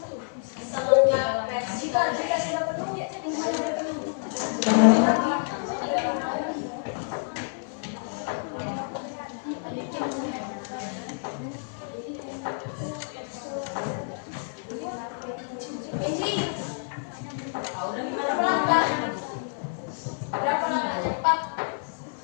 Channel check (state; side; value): silent; right; 58 dB below the other